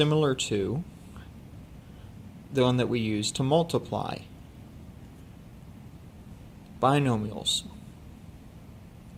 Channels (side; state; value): both; identical; correlation 1.00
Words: to the one that we use to multiply binomials.